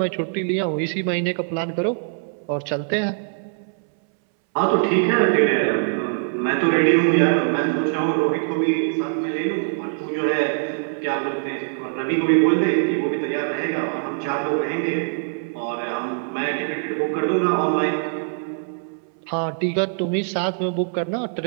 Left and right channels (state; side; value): silent; left; 64 dB below the other